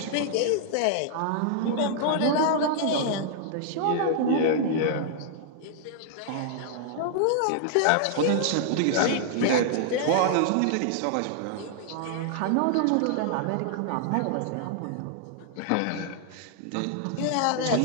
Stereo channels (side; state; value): both; different; correlation -0.01